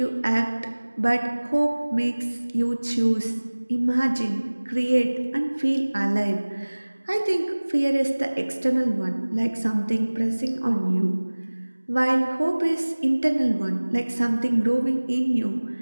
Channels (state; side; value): inverted; both; correlation -1.00